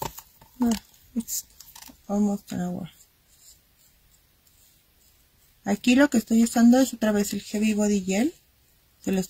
No, it's almost an hour. Aquí lo que estoy usando es otra vez el heavy body gel. Se lo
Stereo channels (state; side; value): identical; both; correlation 1.00